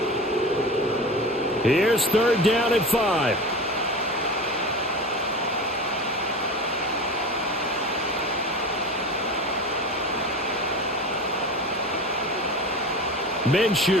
Here's 3rd down at 5.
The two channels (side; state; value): both; normal; correlation 0.31